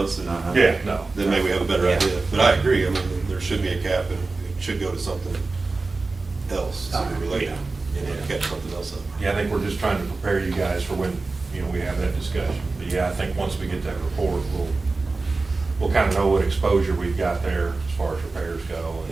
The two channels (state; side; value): quieter; left; 3.7 dB